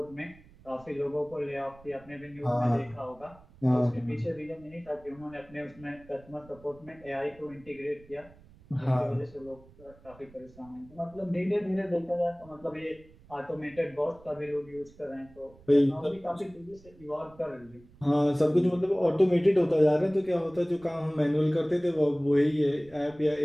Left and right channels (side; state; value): right; noise; rumble, 24 dB below the sound